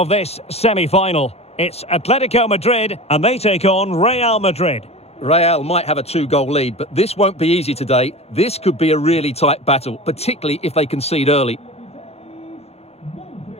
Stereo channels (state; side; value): late; right; 0.30 ms